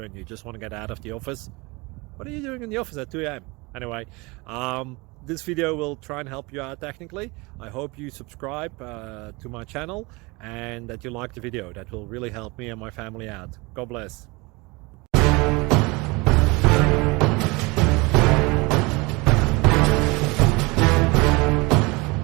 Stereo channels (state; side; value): quieter; left; 25.4 dB